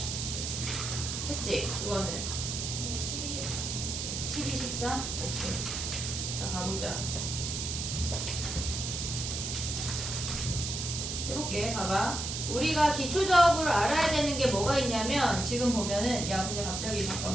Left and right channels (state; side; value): noise; right; hiss, 3 dB below the sound